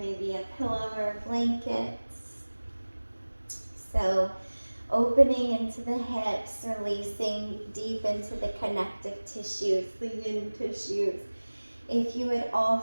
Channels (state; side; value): inverted; both; correlation -1.00